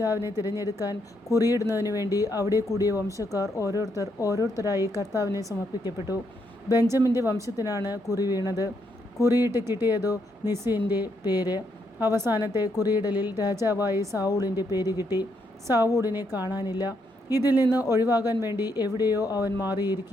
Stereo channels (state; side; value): normal; both; correlation 0.77